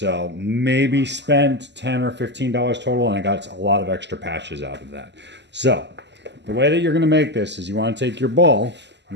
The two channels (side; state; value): left; late; 0.51 ms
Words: maybe spent $10 or $15 total, and I got a lot of extra patches out of that. So the way that you're going to make this is you want to take your ball,